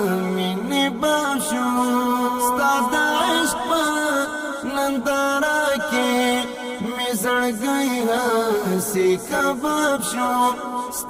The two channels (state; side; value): identical; both; correlation 1.00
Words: مینې باب شو ستا د عشق په ننداره کې مې زړګی هسې کباب شو